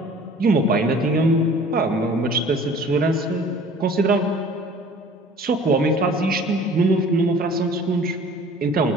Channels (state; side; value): normal; both; correlation 0.48